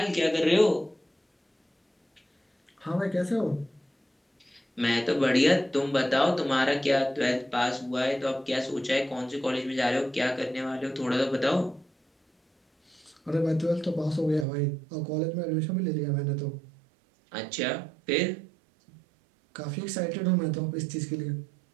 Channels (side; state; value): left; drops out; at 14.5 s